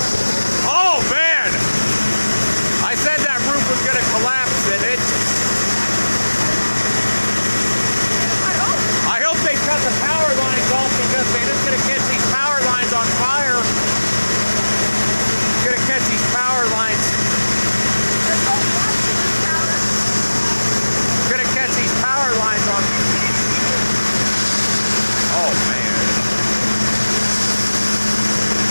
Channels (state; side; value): inverted; both; correlation -1.00